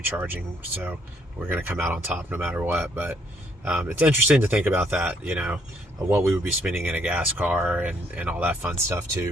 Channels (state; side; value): normal; both; correlation 0.69